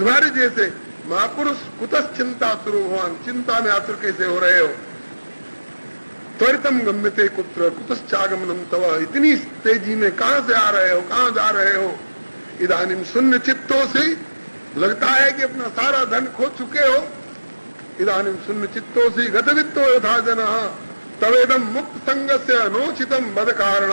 जैसे महापुरुष कुतश्चिंता सुरो भगवान, चिंता में आतुर कैसे हो रहे हो? त्वरितम गम्यते कुत्र कुतश्चागमनम तव, इतनी तेजी में कहां से आ रहे हो, कहां जा रहे हो? इदानीम शून्य चित्तों से, लगता है कि अपना सारा धन खो चुके हो। इदानीम शून्य चित्तों से गतवित्तो यथा जनः तवेदम मुक्त संग से अनोचितम बद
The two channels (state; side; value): inverted; both; correlation -1.00